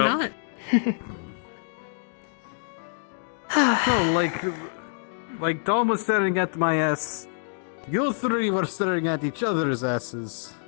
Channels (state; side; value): silent; right; digital silence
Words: No, like Tom was staring at my ass. You three were staring at each other's asses.